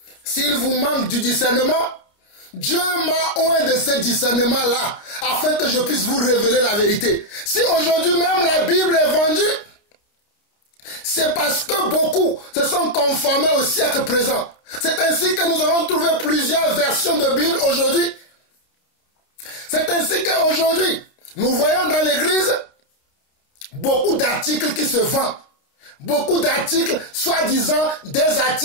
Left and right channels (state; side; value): late; right; 29 ms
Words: S'il vous manque du discernement, Dieu m'a oint de ce discernement-là, afin que je puisse vous révéler la vérité. Si aujourd'hui même la Bible est vendue, c'est parce que beaucoup se sont conformés au siècle présent. C'est ainsi que nous avons trouvé plusieurs versions de Bible aujourd'hui. C'est ainsi qu'aujourd'hui, nous voyons dans l'église beaucoup d'articles qui se vendent. Beaucoup d'articles, soi-disant des